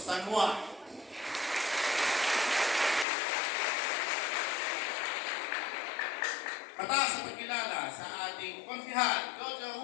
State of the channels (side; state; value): right; drops out; at 3.1 s